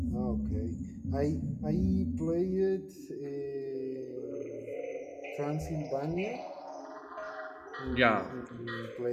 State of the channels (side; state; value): both; identical; correlation 1.00